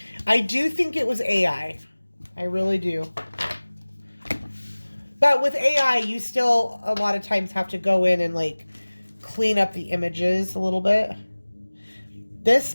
I do think it was AI. I really do. But with AI, you still a lot of times have to go in and, like, clean up the images a little bit. This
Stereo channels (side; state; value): both; inverted; correlation -1.00